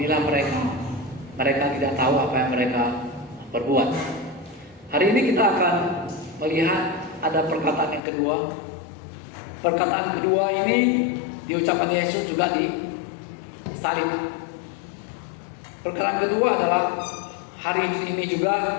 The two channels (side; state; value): right; drops out; at 8.0 s